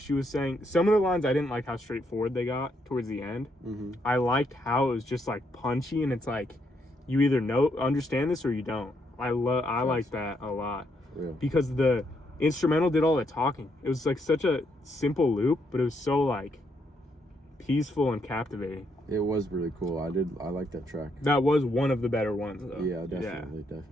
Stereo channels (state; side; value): normal; both; correlation 0.76